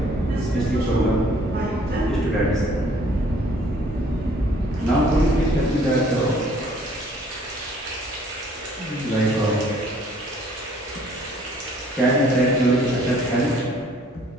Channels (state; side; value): normal; both; correlation 0.59